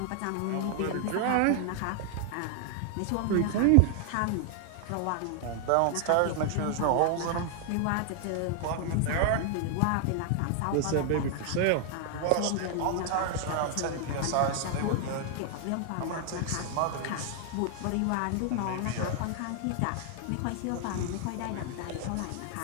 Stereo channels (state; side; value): different; both; correlation 0.00